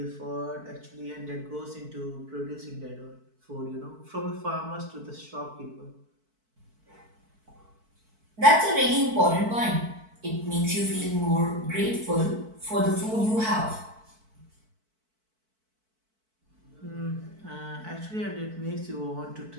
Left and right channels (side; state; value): left; late; 4.5 ms